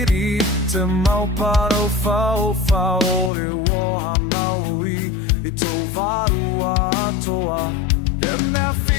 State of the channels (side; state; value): right; drops out; at 3.3 s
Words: te mau paro fau e woha maui I tō waru atoa e mea